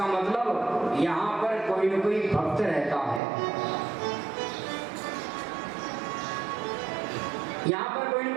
मतलब यहाँ पर कोई न कोई भक्त रहता है, यहाँ पर कोई न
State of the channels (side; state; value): left; drops out; at 3.2 s